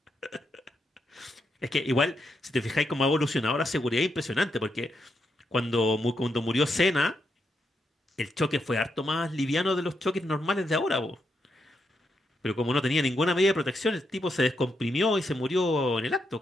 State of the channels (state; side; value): normal; both; correlation 0.81